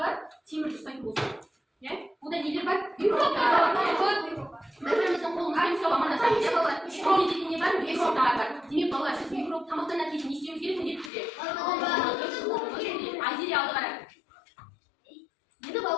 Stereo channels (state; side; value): drops out; right; at 11.1 s